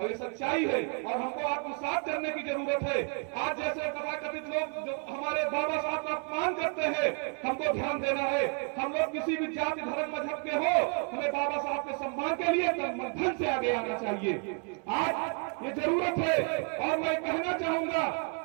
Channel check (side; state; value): left; quieter; 38.5 dB